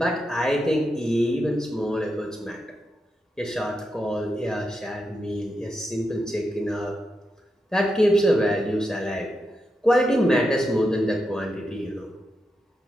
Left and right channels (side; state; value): both; normal; correlation 0.86